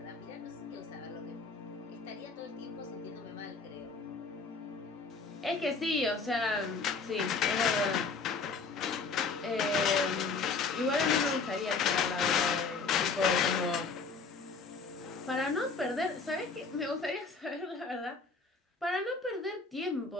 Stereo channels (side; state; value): right; quieter; 4.5 dB